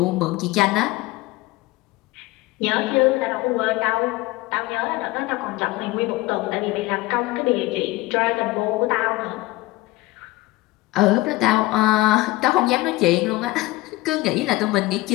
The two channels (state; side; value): quieter; right; 19.7 dB